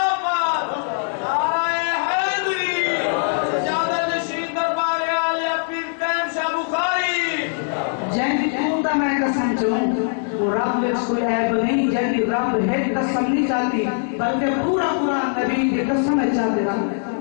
رب میں کوئی عیب نہیں، جنہی رب ہے قسم نہیں چاہتی بلکہ پورا پورا نبی کی قسم ہے چاہتے رب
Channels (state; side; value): silent; right; digital silence